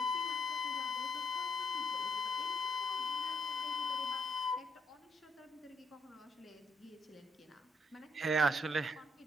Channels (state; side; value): normal; both; correlation 0.73